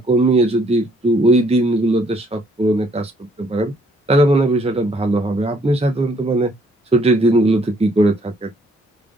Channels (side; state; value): both; normal; correlation 0.65